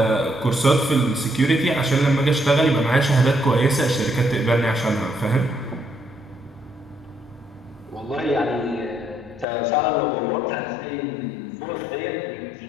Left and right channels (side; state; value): right; drops out; at 9.5 s